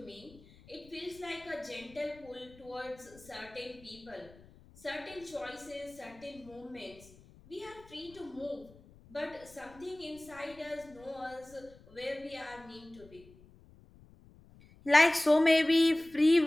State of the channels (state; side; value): noise; left; rumble, 24 dB below the sound